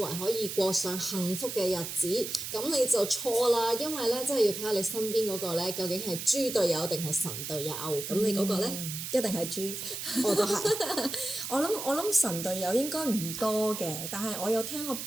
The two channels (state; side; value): noise; right; hiss, 6 dB below the sound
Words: 可以過上幸福嘅日子，咁你就錯啦，因為咧真係要睇下你身邊嗰個咧究竟係豬隊友定係神隊友，咁你嗰個咧？一定係豬，我都係。我諗神隊友應該唔多嘅，但係我有聽我